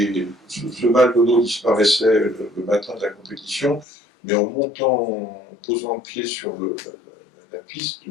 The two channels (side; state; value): right; drops out; at 3.9 s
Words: ce mal de dos disparaissait le matin de la compétition, mais en montant, en posant le pied sur la piste,